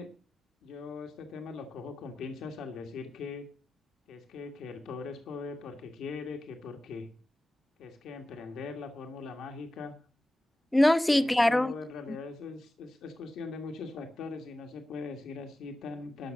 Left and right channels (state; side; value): normal; both; correlation 0.94